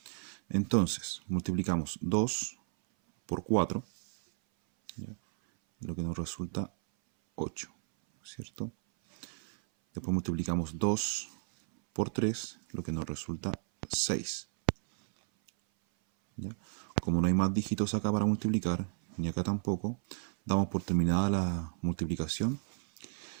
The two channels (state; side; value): silent; left; 56 dB below the other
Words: Entonces, multiplicamos 2 por 4, ¿ya? Lo que nos resulta 8, ¿cierto? Después multiplicamos 2 por 3, lo que nos resulta 6. ¿Ya? Como no hay más dígitos acá para multiplicar, ni acá tampoco, damos por terminada la multiplicación